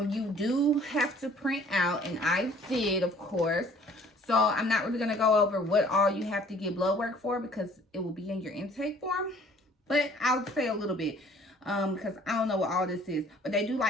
you do have to print out, and I did, of course. So I'm not really going to go over what all you have to get blood work for because it will be in your intake form, but I'll say a little bit because I don't know what all this is. But they do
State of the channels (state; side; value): normal; both; correlation 0.55